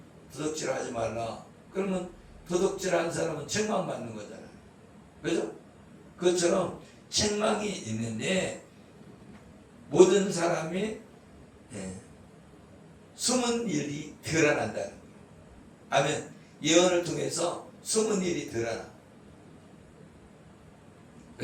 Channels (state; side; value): identical; both; correlation 1.00